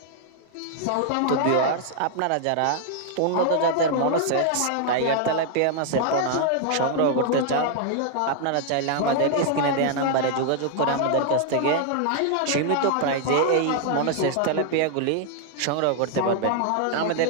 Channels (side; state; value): both; different; correlation 0.00